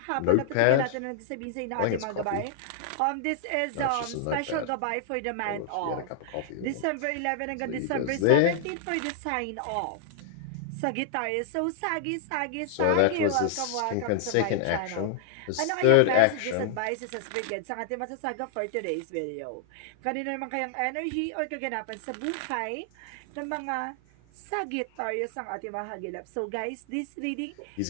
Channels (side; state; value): both; different; correlation 0.00